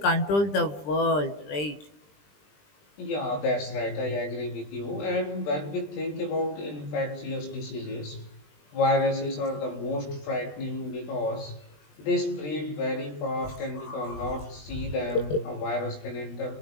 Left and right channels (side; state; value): right; late; 20 ms